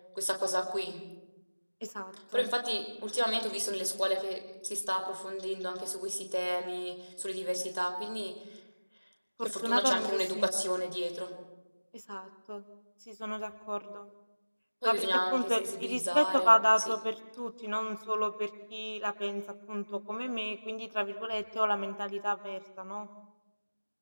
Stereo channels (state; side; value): inverted; both; correlation -1.00